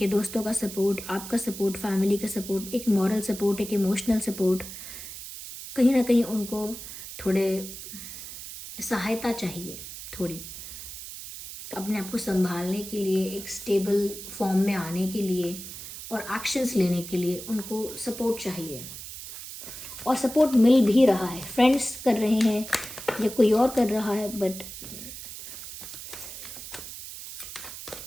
दोस्तों का सपोर्ट, आपका सपोर्ट, फैमिली का सपोर्ट, एक मॉरल सपोर्ट, एक इमोशनल सपोर्ट, कहीं ना कहीं उनको थोड़े सहायता चाहिए, थोड़ी अपने आप को संभालने के लिए, एक स्टेबल फॉर्म में आने के लिए और एक्शंस लेने के लिए उनको सपोर्ट चाहिए। और सपोर्ट मिल भी रहा है, फ्रेंड्स कर रहे हैं या कोई और कर रहा है, बट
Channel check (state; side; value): noise; right; hiss, 11 dB below the sound